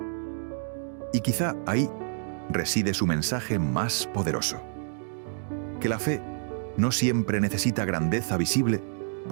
Y quizá ahí reside su mensaje más poderoso: que la fe no siempre necesita grandeza visible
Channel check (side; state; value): left; silent; digital silence